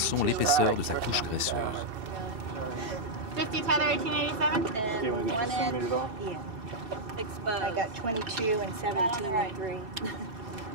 l'épaisseur de sa couche graisseuse. 50 Tether 1887? Okay, want to get One the end, centimeters off? yeah. I got 22 and 17 and 3.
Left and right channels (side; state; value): left; late; 2.7 ms